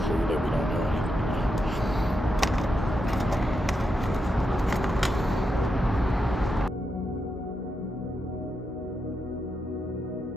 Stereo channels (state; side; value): normal; both; correlation 0.85